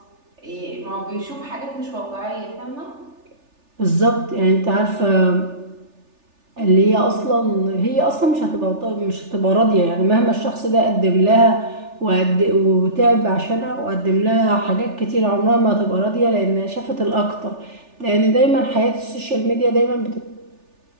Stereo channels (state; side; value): late; left; 3.4 ms